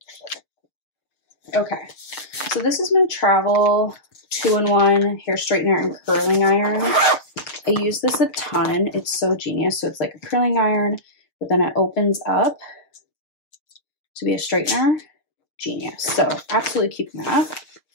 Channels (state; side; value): late; right; 6.7 ms